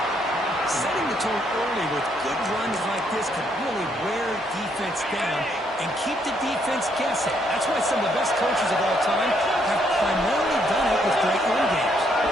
Setting the tone early with good runs like this can really wear defense down and keep the defense guessing. That's why some of the best coaches of all time have primarily done it with great run games.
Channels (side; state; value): both; normal; correlation 0.72